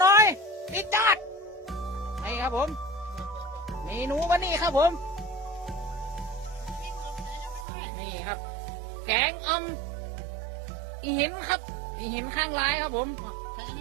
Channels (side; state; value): left; drops out; at 7.7 s